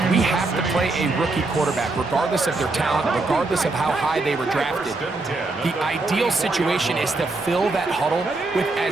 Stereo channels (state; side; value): quieter; left; 3.3 dB